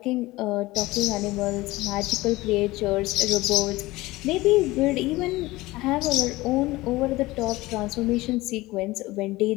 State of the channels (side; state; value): right; quieter; 19.6 dB